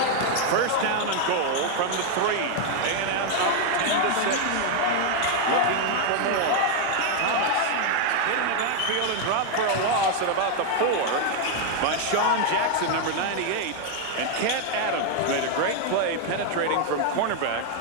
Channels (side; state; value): both; different; correlation 0.01